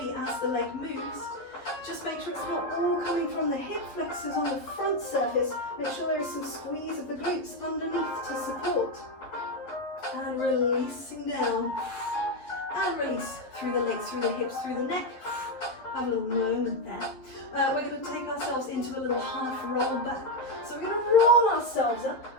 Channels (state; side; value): late; right; 11 ms